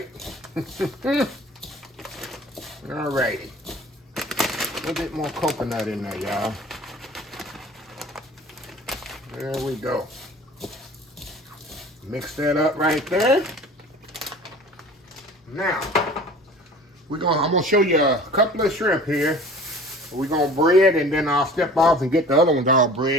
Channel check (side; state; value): both; normal; correlation 0.44